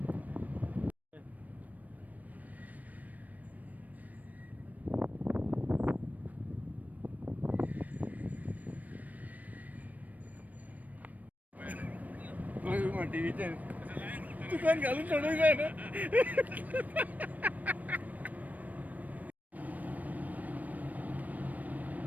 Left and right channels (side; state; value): left; late; 0.076 ms